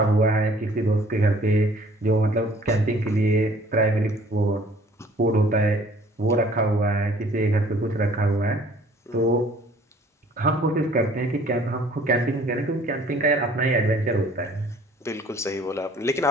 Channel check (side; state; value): both; normal; correlation 0.55